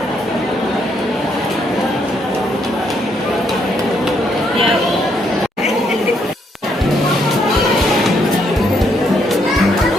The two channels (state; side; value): normal; both; correlation 0.73